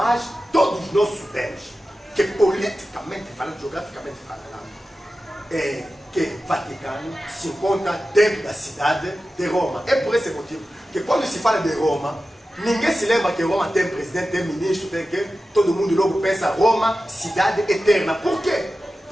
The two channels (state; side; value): normal; both; correlation 0.94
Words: todos nós sabemos que politicamente falando, geograficamente falando, que o Vaticano se encontra dentro da cidade de Roma. É por esse motivo que quando se fala de Roma, ninguém se lembra que Roma tem presidente, tem ministro, tem que todo mundo logo pensa Roma, cidade eterna. Por quê?